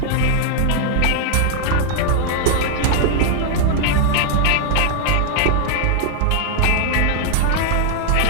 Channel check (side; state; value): both; different; correlation 0.00